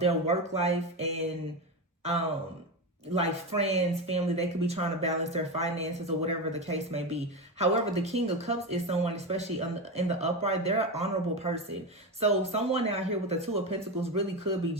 their work life and like friends, family. They could be trying to balance their finances or whatever the case may be. However, the King of Cups is someone, especially in the upright, they're an honorable person. So someone out here with the Two of Pentacles really could be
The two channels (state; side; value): normal; both; correlation 0.18